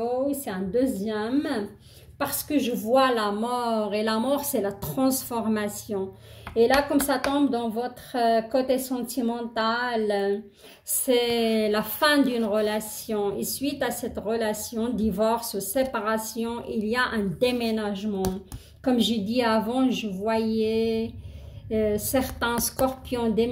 c'est un deuxième, parce que je vois la mort, et la mort, c'est la transformation. Et là, comme ça tombe dans votre côté sentimental, c'est la fin d'une relation. Et suite à cette relation, divorce ou séparation, il y a un déménagement. Comme j'ai dit avant, je voyais certains scorpions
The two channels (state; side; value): identical; both; correlation 1.00